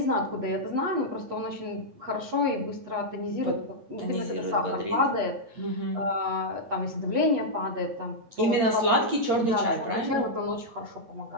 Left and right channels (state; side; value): late; left; 8.8 ms